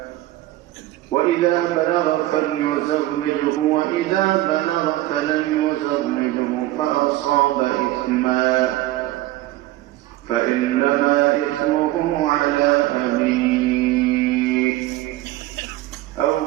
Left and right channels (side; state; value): left; quieter; 16.6 dB